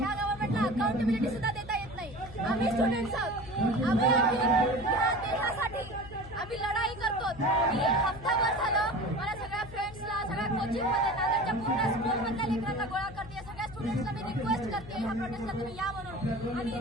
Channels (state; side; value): noise; left; hum, 15 dB below the sound